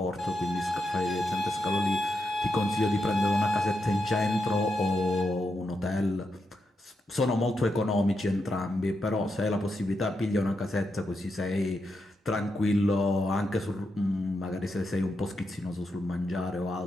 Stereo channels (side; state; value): both; normal; correlation 0.85